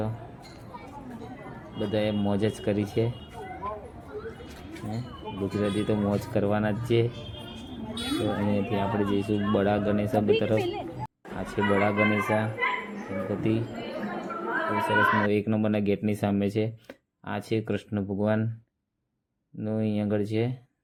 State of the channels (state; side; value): identical; both; correlation 1.00